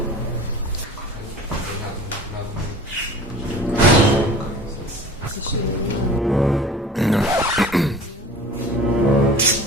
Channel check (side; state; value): both; normal; correlation 0.41